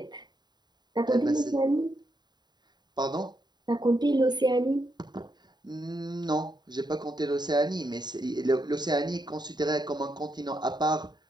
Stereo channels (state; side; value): late; left; 0.21 ms